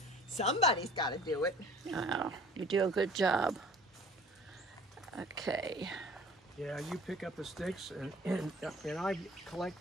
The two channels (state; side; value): normal; both; correlation 0.48